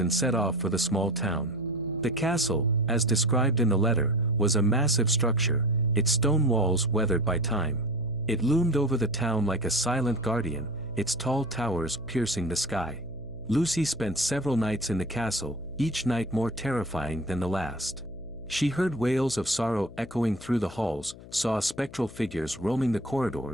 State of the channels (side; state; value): left; noise; hum, 18 dB below the sound